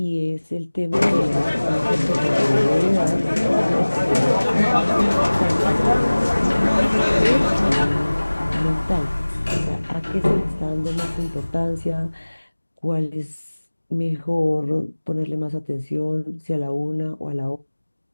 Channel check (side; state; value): both; inverted; correlation -1.00